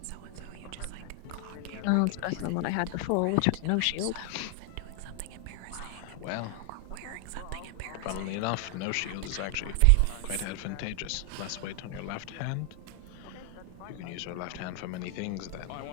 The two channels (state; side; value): different; both; correlation 0.00